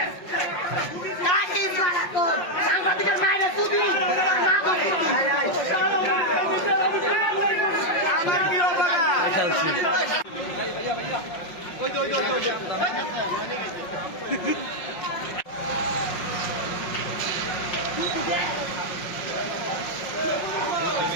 সাংবাদিকের মায়ের তুদি আমার প্রিয় বাবা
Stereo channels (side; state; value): right; late; 5.5 ms